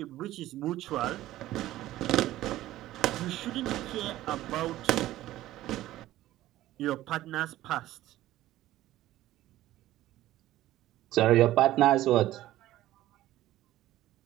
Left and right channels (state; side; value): quieter; left; 15.0 dB